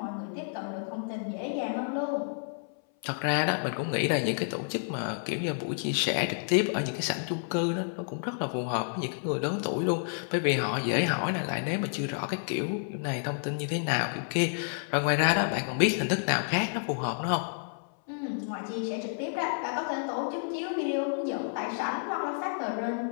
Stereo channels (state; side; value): silent; right; 58 dB below the other